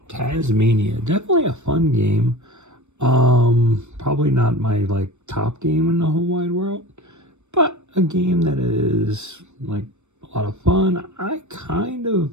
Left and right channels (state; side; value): late; left; 0.83 ms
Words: Tasmania, definitely a fun game. Probably not my top game in the whole wide world, but a game that is a lot of fun. I kind of